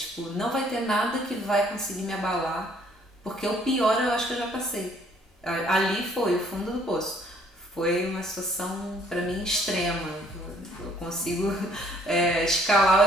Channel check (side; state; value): both; normal; correlation 0.62